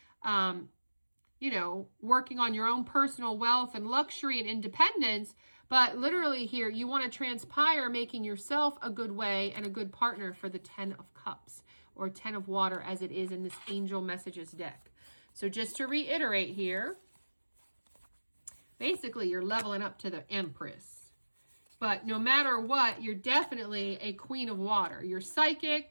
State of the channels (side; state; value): both; inverted; correlation -1.00